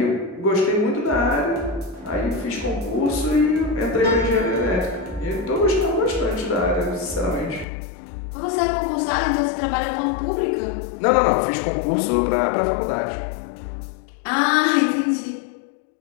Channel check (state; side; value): drops out; right; at 7.7 s